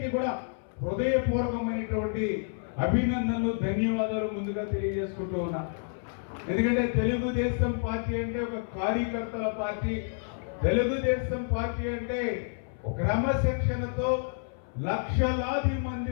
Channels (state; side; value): silent; right; 57 dB below the other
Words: కూడా హృదయపూర్వకమైనటువంటి అభినందనలు, ధన్యవాదాలు ముందుగా తెలియజేసుకుంటూ ఉన్నా. ఎందుకంటే తెలుగుదేశం పార్టీ అంటే ఒక కార్యకర్తల పార్టీ. తెలుగుదేశం పార్టీ అంటే క్రమశిక్షణతో లక్షలాది